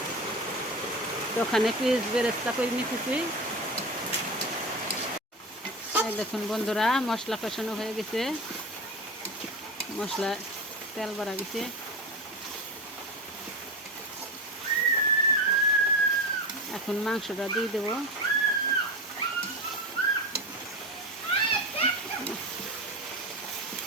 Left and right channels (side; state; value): both; normal; correlation 0.24